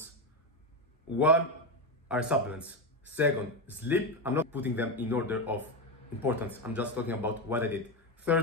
1 are supplements, 2nd sleep. I'm not putting them in order of importance, I'm just talking about what I did.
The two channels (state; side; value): normal; both; correlation 0.12